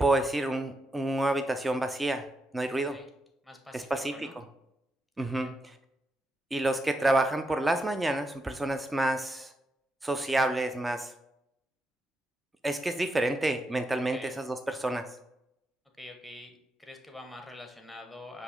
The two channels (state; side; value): normal; both; correlation 0.84